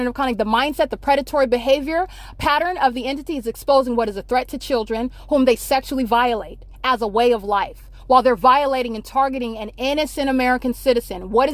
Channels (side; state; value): both; identical; correlation 1.00